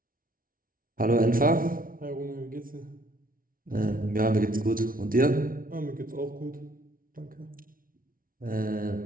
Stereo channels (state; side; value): late; left; 0.41 ms